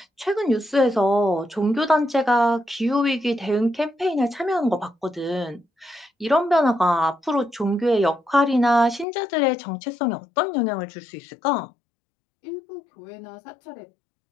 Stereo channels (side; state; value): right; drops out; at 9.1 s